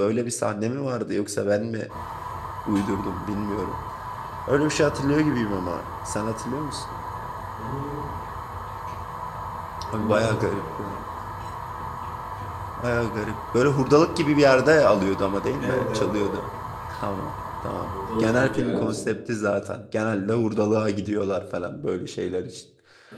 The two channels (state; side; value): identical; both; correlation 1.00